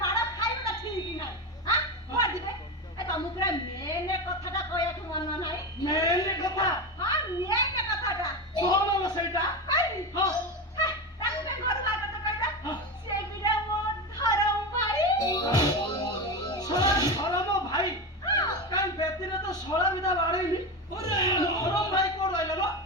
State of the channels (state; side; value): normal; both; correlation 0.19